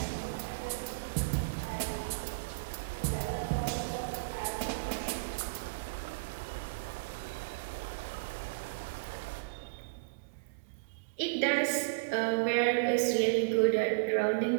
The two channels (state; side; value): quieter; left; 34.8 dB